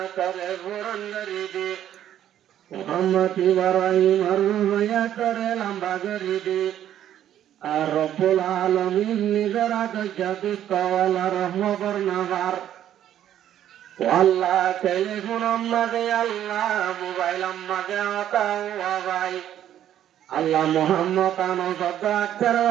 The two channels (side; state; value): left; quieter; 11.1 dB